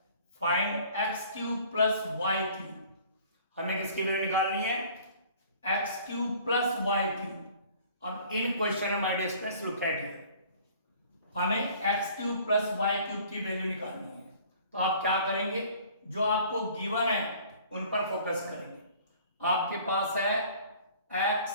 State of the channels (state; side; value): inverted; both; correlation -0.51